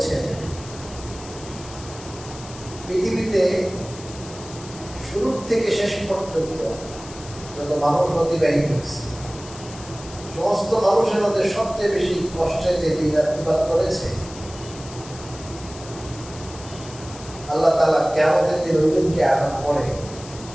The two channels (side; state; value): left; noise; hiss, 16 dB below the sound